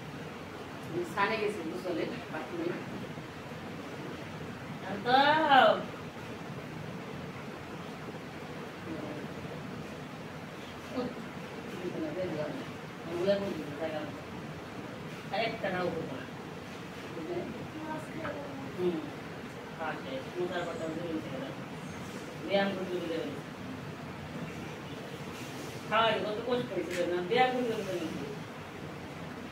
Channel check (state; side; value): identical; both; correlation 1.00